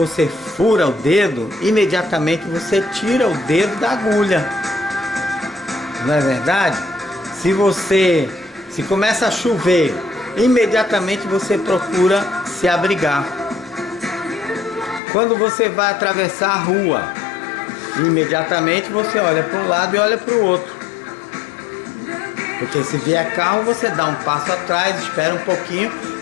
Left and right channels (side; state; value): right; drops out; at 15.0 s